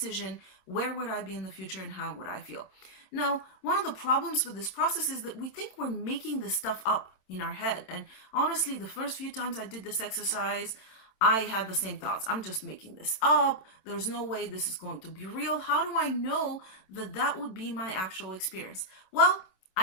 where would I be in the future and how would I feel? Now, one of the problems with this process is that we think we're making this stuff up in our head. And honestly, the first few times I did this exercise, I had the same thoughts. I'm just making this up. There's no way this is going to be real. How do I know that that would be my actual experience? Well,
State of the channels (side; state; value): right; late; 27 ms